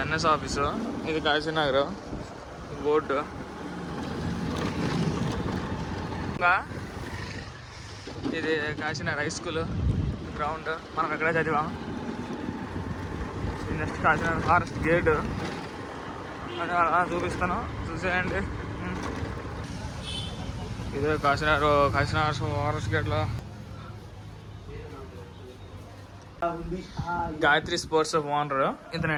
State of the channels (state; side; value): identical; both; correlation 1.00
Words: ఎన్ఎస్ ఆఫీసు, ఇది కాశీనగర్ బోర్డు. ఇది కాశీనగర్ హై స్కూల్ గ్రౌండ్, మనం ఎక్కడే చదివాం. ఇది నెక్స్ట్ కాశీనగర్ ఫారెస్ట్ గేట్ అలా చూపిస్తాను, చూసేయండి. ఇదే కాశీనగర్ ఫారెస్ట్ గేట్లో గాయత్రి స్పోర్ట్స్ ఓనర్